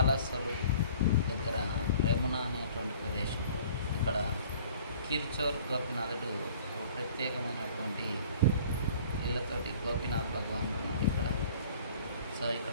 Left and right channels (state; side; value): inverted; both; correlation -0.50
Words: దగ్గర రెమున అనేటువంటి ప్రదేశంలో. ఇక్కడ కిర్చోర్ గోపినాథుడు ఒక ప్రత్యేకమైనటువంటి వీళ్ళతోటి గోపీనాథ్ భగవానుడు ఉన్నాడు ఇక్కడ. సో